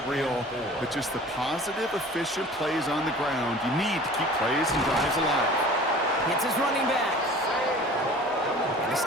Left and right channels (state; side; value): normal; both; correlation 0.44